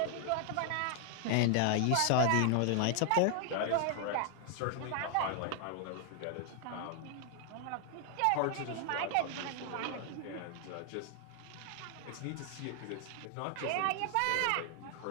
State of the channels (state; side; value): different; both; correlation 0.00